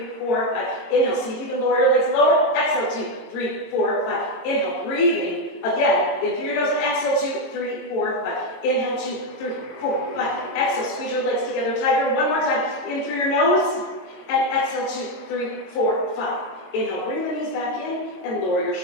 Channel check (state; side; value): late; right; 22 ms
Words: 4, 5. Inhale, see if you can lower your legs lower. Exhale, 2, 3, 4, 5. Inhale, breathing. Again, in through your nose and exhale, 2, 3, 4, 5. Inhale, 2, 3, 4, 5. Exhale, squeeze your legs together tighter. One more time. In through your nose. And exhale, 2, 3, 4, 5. Inhale, bring the knees back in and lower your